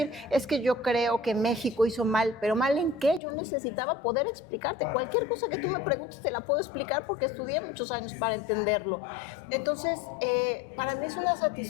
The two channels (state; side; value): drops out; right; at 3.2 s